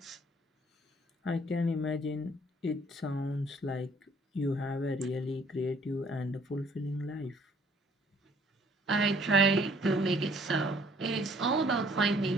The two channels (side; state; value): both; normal; correlation 0.60